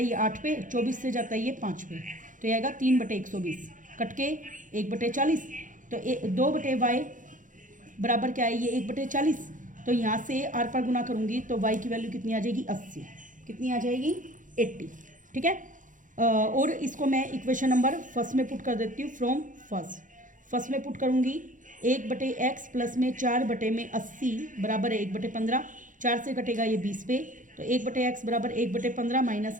ये 8 पे, 24 से जाता है ये 5 पे, तो ये आएगा 3/120, कट के 1/40। तो 2/y बराबर क्या है? ये 1/40। तो यहाँ से r पर गुना करूँगी तो y की वैल्यू कितनी आ जाएगी? 80। कितनी आ जाएगी? 80, ठीक है। और इसको मैं इक्वेशन नंबर फर्स्ट में पुट कर देती हूँ। फ्रॉम फर्स्ट में पुट करूँगी 1/x प्लस में 4/80 बराबर है 1/15। 4 से कटेगा ये 20 पे, तो 1/x बराबर 1/15 माइनस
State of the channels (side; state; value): left; late; 0.38 ms